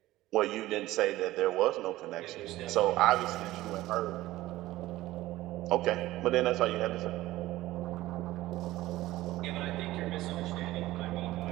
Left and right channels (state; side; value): quieter; left; 16.6 dB